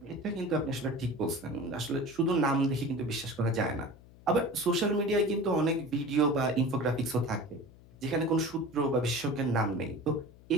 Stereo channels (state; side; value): noise; left; hum, 23 dB below the sound